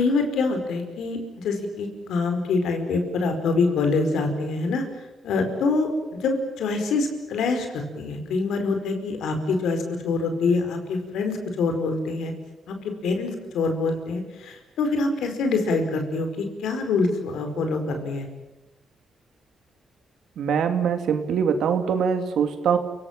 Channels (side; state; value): both; normal; correlation 0.67